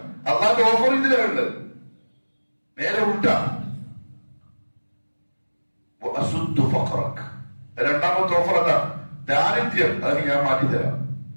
അല്ലാതെ ഓഫർ ഇതിലുണ്ട്. നേരെ ഉൾട്ടാ. രണ്ടാമത്തെ ഓഫർ അതാ, ദാരിദ്ര്യം. അത് ഞാൻ മാറ്റിത്തരാം.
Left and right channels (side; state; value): both; inverted; correlation -1.00